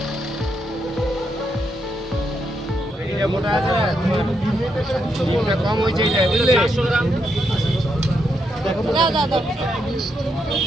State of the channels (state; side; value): normal; both; correlation 0.80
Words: কম হয়েছে বুঝলে। দাও দাও দাও।